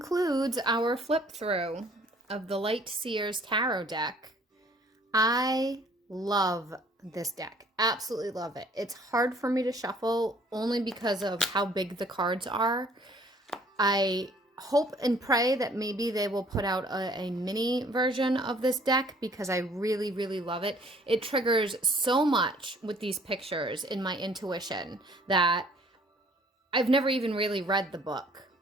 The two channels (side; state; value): both; normal; correlation 0.57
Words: our flip through of the Light Seer's Tarot deck. I love this deck. Absolutely love it. It's hard for me to shuffle only because of how big the cards are. I hope and pray that maybe they will put out a mini version of this deck because I really, really love it. It triggers so much with these pictures in my intuition that I've never even really read the book.